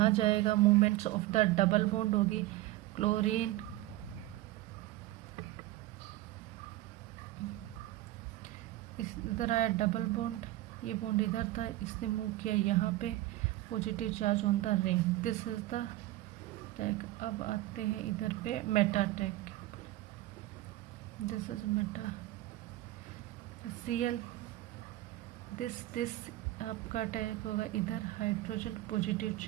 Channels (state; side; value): quieter; left; 16.5 dB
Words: जाएगा, movements of the double bond होगी, क्लोरीन इधर आया डबल बॉन्ड, ये बॉन्ड इधर था, इसने मूव किया यहाँ पे, positive charge on the ring, this is the tag. अब आते हैं इधर पे Meta tag, this is Meta Cl, this आपका टैग होगा इधर, हाइड्रोजन पॉजिटिव